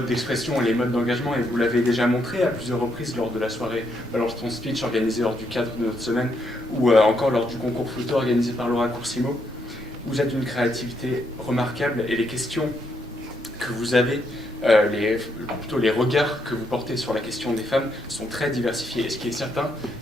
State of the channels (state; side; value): normal; both; correlation 0.76